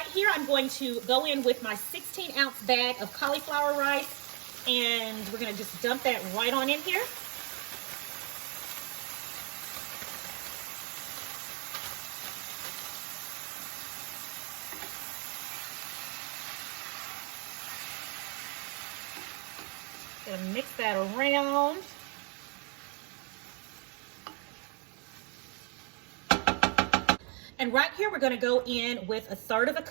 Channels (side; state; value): left; quieter; 35.1 dB